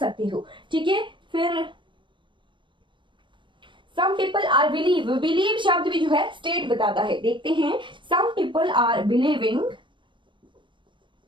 हो। ठीक है, फिर सम पीपल आर बिलीव शब्द भी जो है स्टेट बताता है, देखते हैं। Some people are believing,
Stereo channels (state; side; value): late; left; 0.23 ms